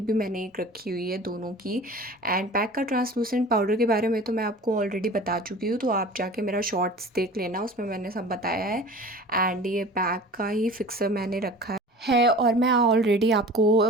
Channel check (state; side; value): normal; both; correlation 0.40